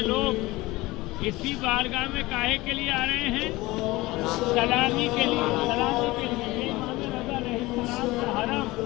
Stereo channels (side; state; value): right; quieter; 20.2 dB